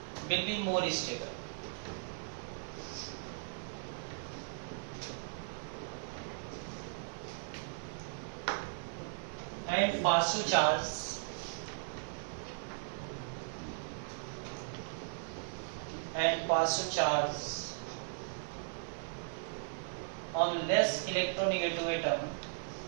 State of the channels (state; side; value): silent; left; 53 dB below the other